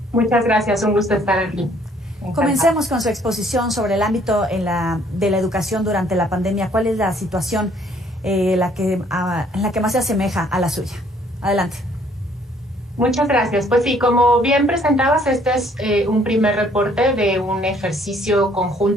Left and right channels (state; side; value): normal; both; correlation 0.62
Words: Muchas gracias, un gusto estar aquí. Comencemos con su exposición sobre el ámbito de la educación durante la pandemia. ¿Cuál es la situación en la que más se asemeja a la suya? Adelante. Muchas gracias. Pues sí, como bien presentabas, este es un primer reporte de un ejercicio